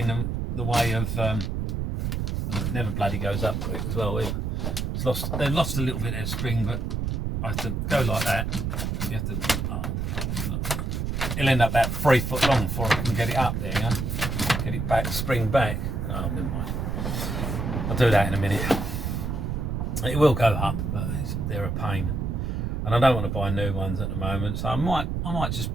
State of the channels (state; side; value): noise; right; rumble, 1 dB below the sound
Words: the way of, it never bloody goes up quick as well. They've lost a little bit of spring, but I have to go like that. You have to, it'll end up about 3 foot long before I can get it up there, you know? Get it back, spring back. Oh, never mind. I'll do that in a minute. It will go up, but they're a pain. And I don't want to buy new ones at the moment, so I might just